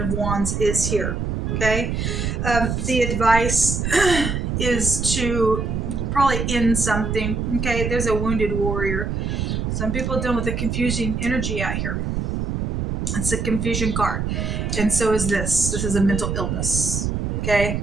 of Wands is here. Okay? The advice is to probably end something. Okay? There's a wounded warrior. Some people are dealing with a confusing energy out here. It's a confusion card. And so is this. This is a mental illness. Okay?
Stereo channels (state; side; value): noise; right; rumble, 1 dB below the sound